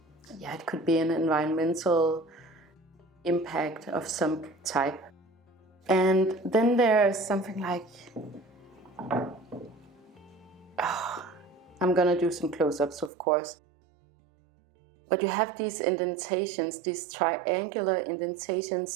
could be an environmental impact of some type. And then there's something like, I'm gonna do some close-ups, of course. But you have these indentations, these triangular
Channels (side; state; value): left; drops out; at 13.1 s